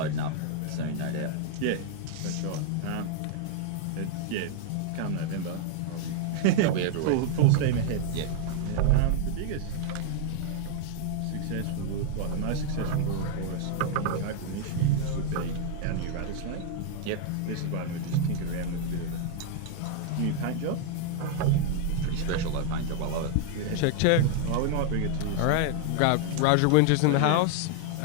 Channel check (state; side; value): different; both; correlation 0.00